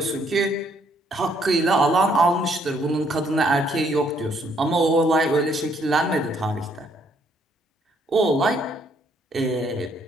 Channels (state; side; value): normal; both; correlation 0.68